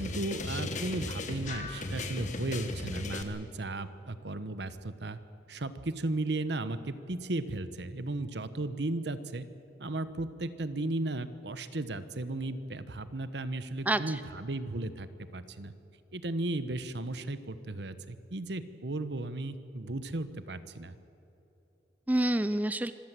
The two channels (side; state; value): both; normal; correlation 0.67